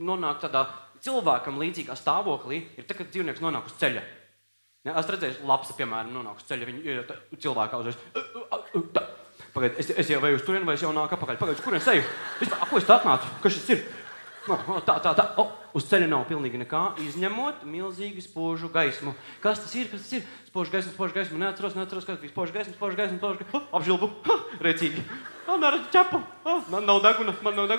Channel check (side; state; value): both; inverted; correlation -1.00